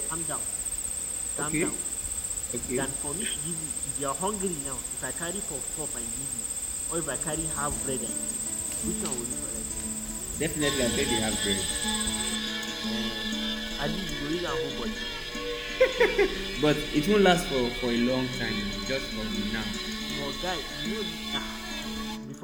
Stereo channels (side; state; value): both; identical; correlation 1.00